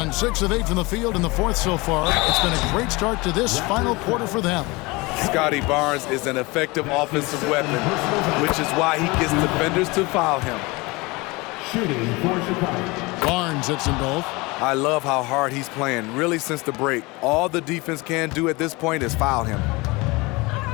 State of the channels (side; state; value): right; quieter; 24.3 dB